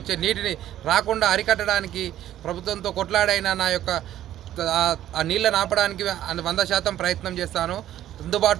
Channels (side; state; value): left; quieter; 12.4 dB